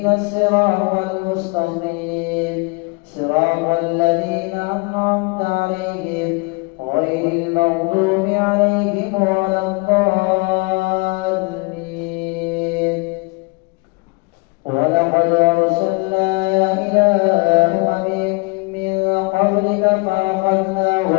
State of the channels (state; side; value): quieter; right; 28.7 dB